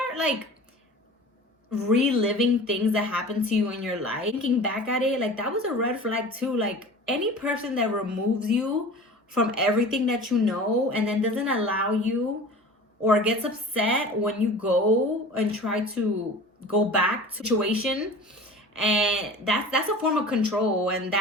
like reliving things that happened to you in your life, thinking back at it, like that was a red flag too. Like any person that removes you from everything that you know and then doesn't allow you, or gets upset when you go and try to go back to situation, and that's a form of control, and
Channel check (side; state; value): both; normal; correlation 0.39